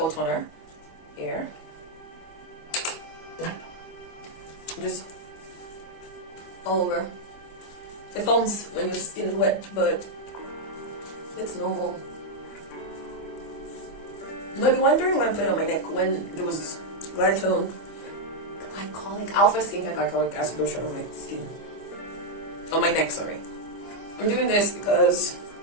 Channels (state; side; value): late; right; 25 ms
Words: toner here, just all over. It foams when your skin is wet, but it's normal. You might be wondering why I'm putting on my neck when there was glycol, alpha skincare glycolic acid lotion on my skin. On my neck, sorry. I'm doing this because